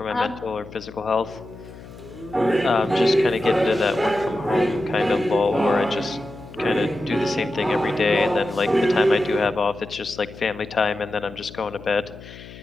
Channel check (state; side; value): noise; left; hum, 17 dB below the sound